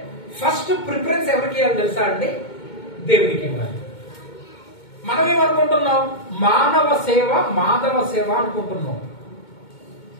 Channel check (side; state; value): right; late; 2.2 ms